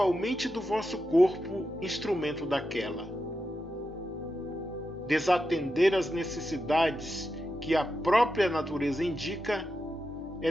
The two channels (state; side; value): normal; both; correlation 0.88